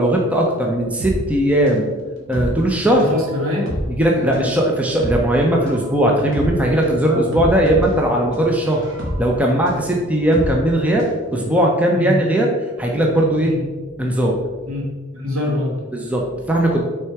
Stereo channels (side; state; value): both; normal; correlation 0.53